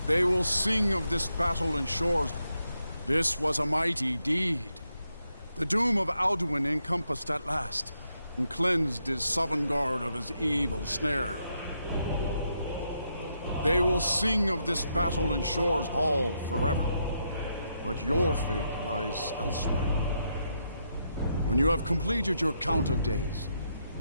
They will sing of this battle and shores. This was a mighty deed. The doom of Alduin encompassed at last, and cleansed his Sovngarde of his evil snare. They will sing of this battle in Shore's Hall forever. But your fate lies elsewhere. When you have completed your count of days,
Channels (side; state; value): both; inverted; correlation -0.80